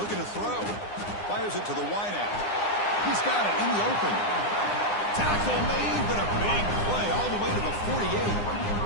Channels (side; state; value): right; late; 9.8 ms